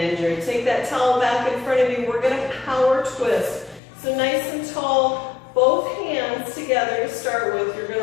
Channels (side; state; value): right; drops out; at 3.8 s